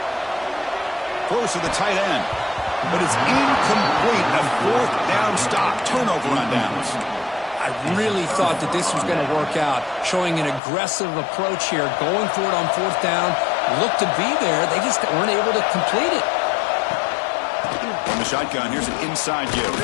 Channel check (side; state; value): right; drops out; at 10.6 s